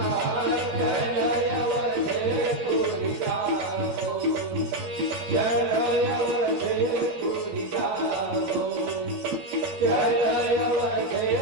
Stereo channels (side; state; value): left; late; 12 ms